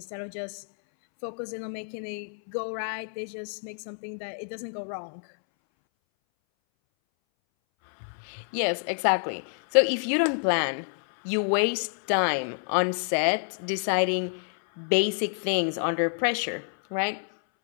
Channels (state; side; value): silent; right; 59 dB below the other